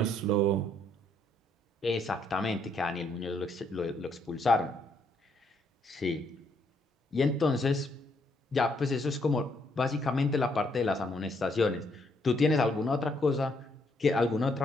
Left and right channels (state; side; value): normal; both; correlation 0.72